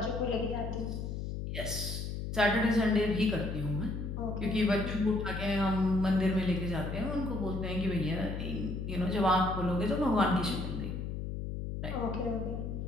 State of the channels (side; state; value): left; noise; hum, 4 dB below the sound